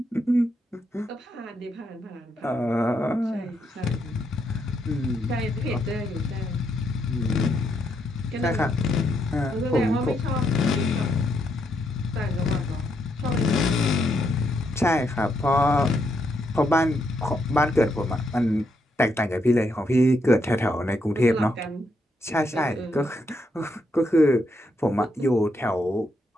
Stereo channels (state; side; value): normal; both; correlation 0.78